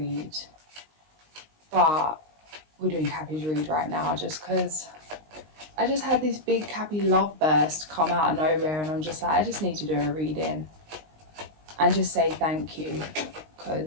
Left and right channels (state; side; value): late; left; 19 ms